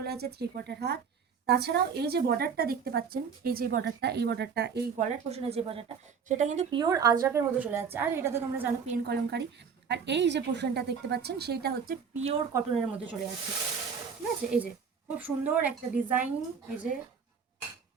আছে 3/4 হাত। তাছাড়াও এই যে বর্ডারটা দেখতে পাচ্ছেন, এই যে বর্ডারটা, এই বর্ডারটা, এই গলার পোষণের যে বর্ডারটা, সেটা কিন্তু পিওর আজরাকের মধ্যে চলে যাচ্ছে। আর এটা তো তোমরা জানো পেন কলমকারি। আর এই যে পোর্শনটা দেখতে পাচ্ছেন সেটা হচ্ছে পিওর কটনের মধ্যে চলে যাচ্ছে, ঠিক আছে? এই যে খুব সুন্দর একটা ডিজাইন, এই যে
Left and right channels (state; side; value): quieter; left; 6.4 dB